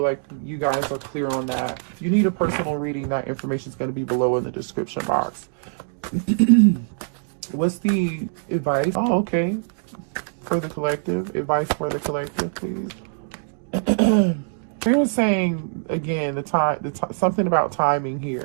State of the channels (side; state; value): left; silent; digital silence